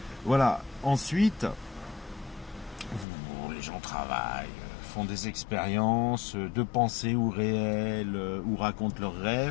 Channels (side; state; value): right; drops out; at 3.1 s